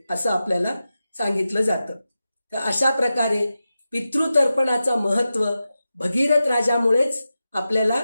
असं आपल्याला सांगितलं जातं. तर अशा प्रकारे पितृतर्पणाचं महत्त्व भगीरथ राजामुळेच आपल्याला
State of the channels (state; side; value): inverted; both; correlation -0.92